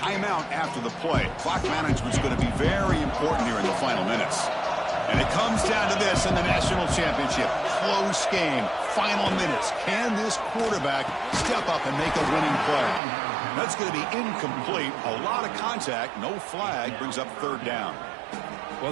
after the play. Clock management is going to be very important here in the final minutes. And it comes down to this in the national championship. Close game, final minutes. Can this quarterback step up and make a winning play? That's going to be incomplete. A lot of contact, no flag, brings up 3rd down.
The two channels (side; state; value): left; drops out; at 13.0 s